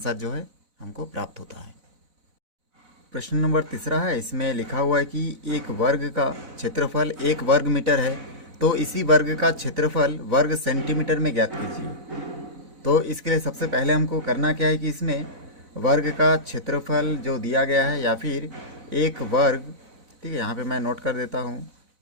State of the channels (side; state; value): left; late; 4.0 ms